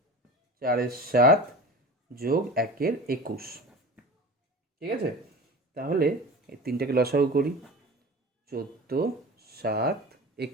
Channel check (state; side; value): normal; both; correlation 0.34